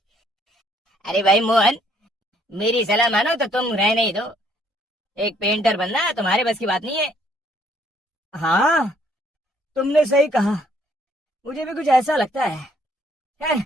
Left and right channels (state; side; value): normal; both; correlation 0.65